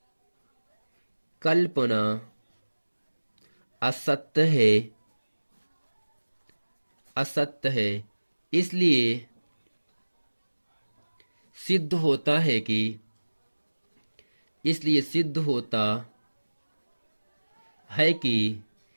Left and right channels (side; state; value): both; inverted; correlation -1.00